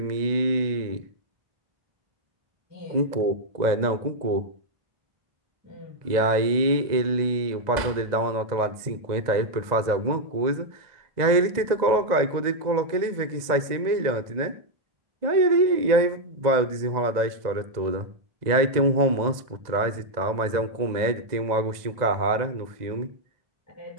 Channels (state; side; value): late; left; 2.0 ms